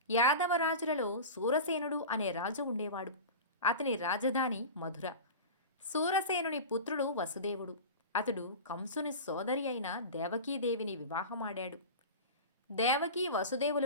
యాదవ రాజులలో సూరసేనుడు అనే రాజు ఉండేవాడు. అతని రాజధాని మధుర. సూరసేనుని పుత్రుడు వసుదేవుడు. అతడు కంసుని సోదరి అయిన దేవకీదేవిని వివాహమాడాడు. దేవకీ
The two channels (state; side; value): inverted; both; correlation -0.30